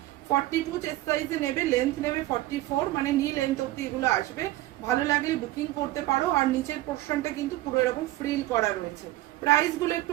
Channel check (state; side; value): quieter; left; 16.6 dB